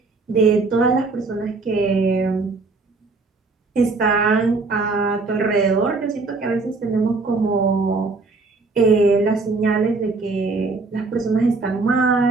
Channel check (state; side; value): quieter; left; 3.8 dB